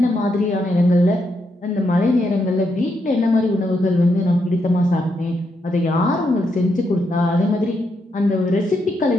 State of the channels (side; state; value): both; normal; correlation 0.80